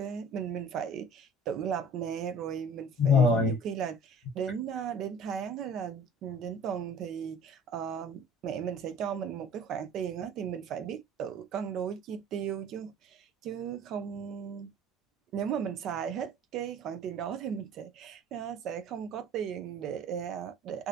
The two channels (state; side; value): normal; both; correlation 0.46